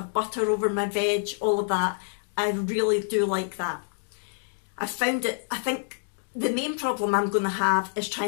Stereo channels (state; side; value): silent; right; digital silence